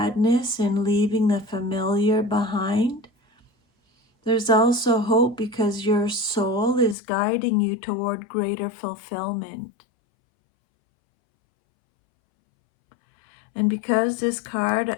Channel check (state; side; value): drops out; right; at 7.0 s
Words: in leaving the familiar behind, there's also hope because your soul is guiding you toward greater fulfillment. And because this card